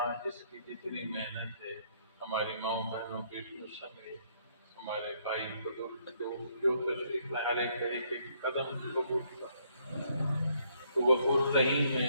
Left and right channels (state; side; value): inverted; both; correlation -0.69